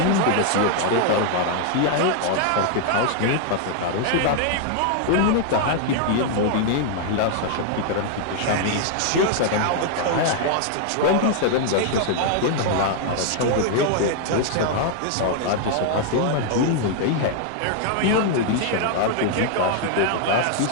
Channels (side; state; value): both; different; correlation 0.00